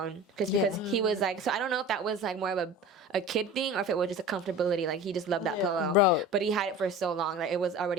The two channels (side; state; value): both; normal; correlation 0.36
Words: because he was like. So I don't know if that was like more of a kid thing or if it was just a comfortability. Like he just loved that pillow. Bro. But he had it for so long that it was